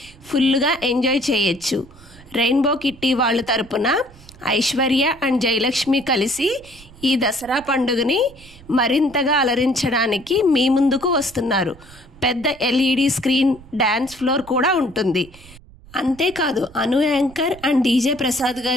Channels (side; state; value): right; noise; rumble, 22 dB below the sound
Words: ఫుల్గా ఎంజాయ్ చేయొచ్చు. రెయిన్బో కిట్టి వాళ్ళ తరపున ఐశ్వర్య అండ్ జయలక్ష్మి కలిసి ఈ దసరా పండుగని మరింతగా అలరించడానికి మీ ముందుకు వస్తున్నారు. పెద్ద LED స్క్రీన్, డ్యాన్స్ ఫ్లోర్ కూడా ఉంటుంది. అంతేకాదు అను యాంకర్ అండ్ DJ ప్రసాద్